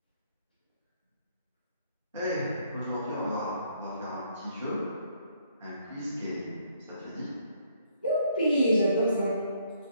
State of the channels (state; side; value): inverted; both; correlation -0.68